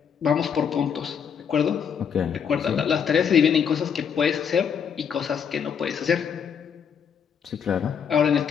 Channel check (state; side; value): quieter; right; 7.3 dB